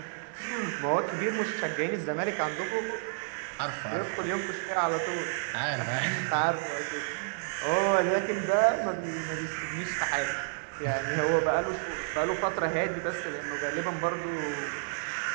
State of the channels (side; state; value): left; silent; digital silence